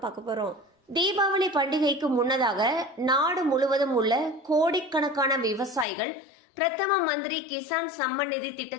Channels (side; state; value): right; drops out; at 5.9 s